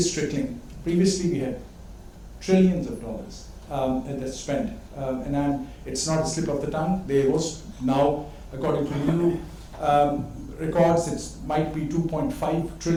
trickling. Previously we had trillions of dollars that's spent. It's not a slip of the tongue. There was now, according to new records, it might be $2.5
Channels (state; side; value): identical; both; correlation 1.00